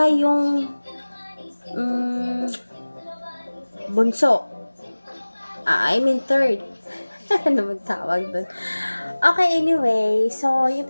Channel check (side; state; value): both; inverted; correlation -1.00